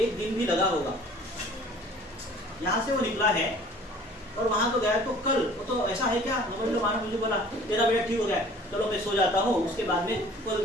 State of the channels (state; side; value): normal; both; correlation 0.50